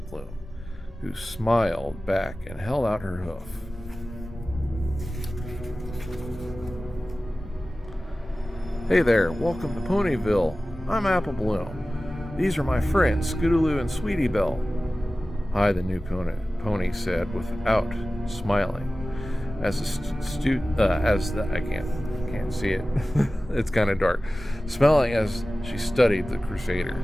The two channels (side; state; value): both; normal; correlation 0.96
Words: Bloom, who smiled back and held out her hoof. Hey there, welcome to Ponyville. I'm Apple Bloom. These are my friends, Scootaloo and Sweetiebelle. Hi, the new pony said without smiling. I can't see it. It's kind of dark. Smiling as she studied the